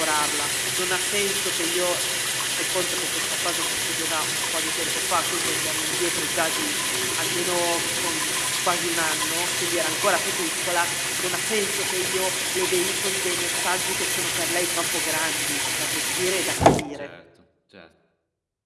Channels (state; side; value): identical; both; correlation 1.00